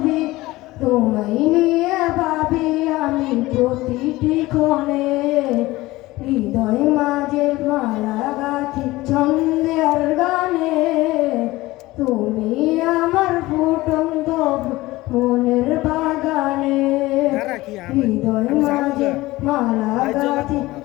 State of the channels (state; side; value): quieter; right; 19.0 dB